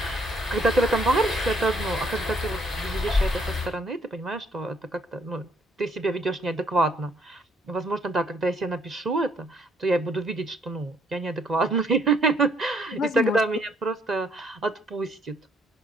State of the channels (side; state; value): both; normal; correlation 0.67